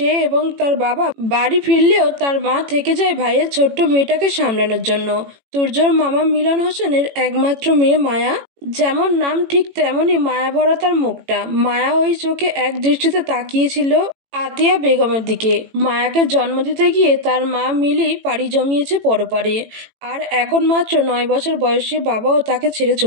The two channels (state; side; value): late; left; 18 ms